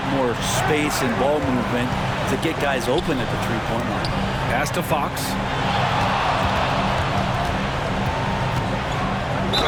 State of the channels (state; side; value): identical; both; correlation 1.00